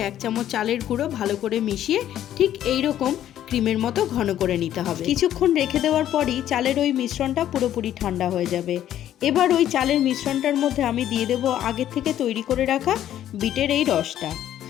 1 চামচ চালের গুঁড়ো ভালো করে মিশিয়ে ঠিক এই রকম ক্রিমের মতো ঘন করে নিতে হবে। কিছুক্ষণ রেখে দেওয়ার পরই চালের ওই মিশ্রণটা পুরোপুরি ঠান্ডা হয়ে যাবে। এবার ওই চালের মিশ্রণটার মধ্যে আমি দিয়ে দেব আগে থেকে তৈরি করে রাখা বিটের এই রসটা।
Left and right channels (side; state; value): right; quieter; 11.6 dB